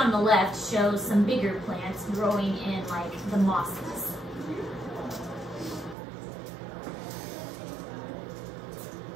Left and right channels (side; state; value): left; drops out; at 6.0 s